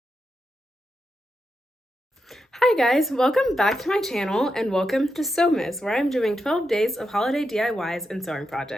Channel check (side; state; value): both; normal; correlation 0.86